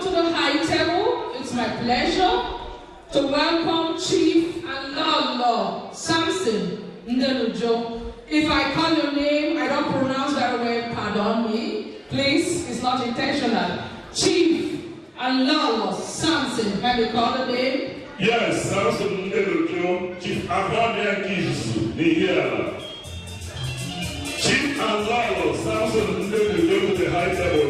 to the high table. It's my pleasure to welcome Chief and Lolo Samson Ndelujo. If I call your name, I don't pronounce very well, pardon me. Please, it's not intentional. Chief and Lolo Samson, can you call the name? yes, Samson Ndelujo, Chief Abraham Kisu, the here. Chief and Lalo, Samson Ndelujo to the high table,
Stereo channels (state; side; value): identical; both; correlation 1.00